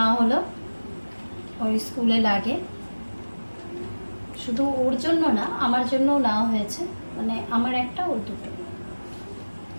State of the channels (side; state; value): both; inverted; correlation -1.00